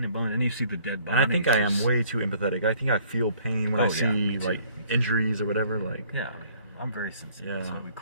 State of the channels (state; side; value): inverted; both; correlation -0.59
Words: and bone, and then you see the dead bodies. And I think I am way too empathetic. I think I feel pain when I see like injuries or whatever. Like, yeah, I mean, I'm very sensitive. Yeah. That's why we